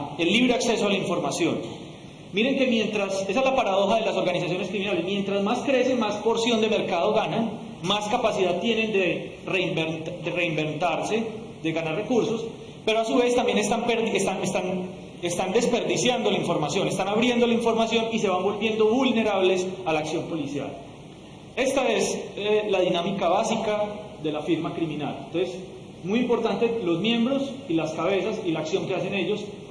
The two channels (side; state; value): both; identical; correlation 1.00